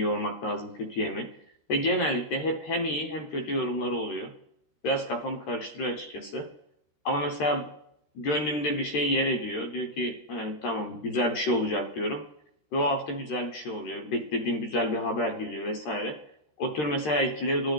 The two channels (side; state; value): right; late; 13 ms